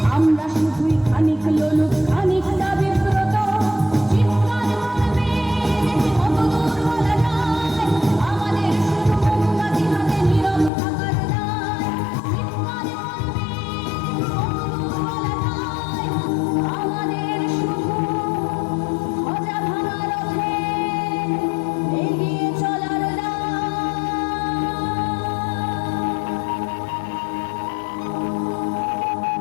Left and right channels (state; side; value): drops out; right; at 10.7 s